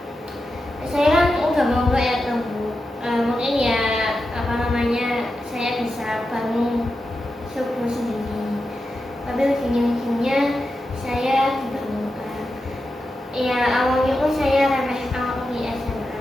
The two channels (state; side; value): normal; both; correlation 0.90